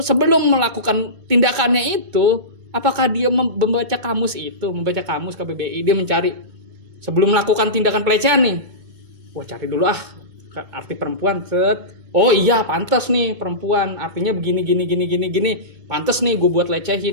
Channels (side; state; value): left; late; 2.2 ms